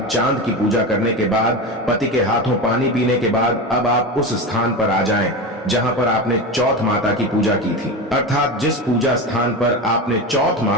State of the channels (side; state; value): both; normal; correlation 0.22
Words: चांद की पूजा करने के बाद, पति के हाथों पानी पीने के बाद अब आप उस स्थान पर आ जाएं जहां पर आपने चौथ माता की पूजा की थी। अर्थात जिस पूजा स्थान पर आपने चौथ